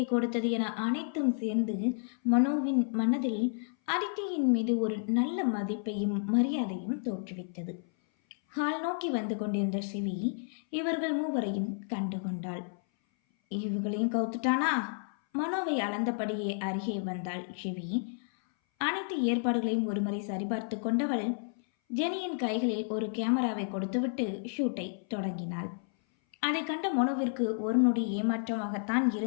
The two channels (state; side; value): silent; right; 57 dB below the other